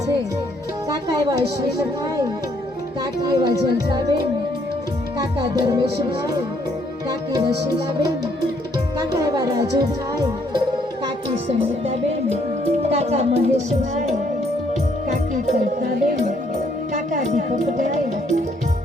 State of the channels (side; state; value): both; normal; correlation 0.68